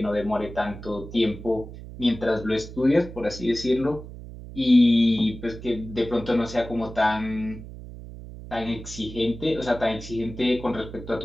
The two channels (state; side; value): noise; right; hum, 13 dB below the sound